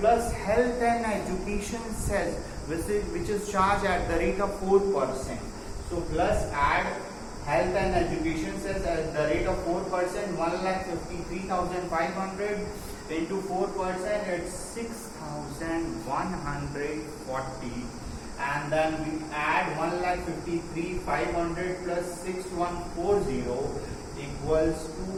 health and education cess, which is charged at the rate of 4%. So plus add health and education cess at the rate of 4%. 1,53,500 into 4%, it's 6,140. And then we add 1,53,500 plus 6,140 equals to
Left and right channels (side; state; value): both; identical; correlation 1.00